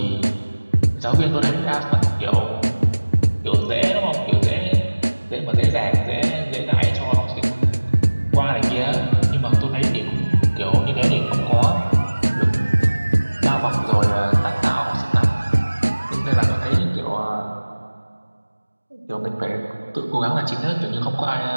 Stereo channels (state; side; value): inverted; both; correlation -1.00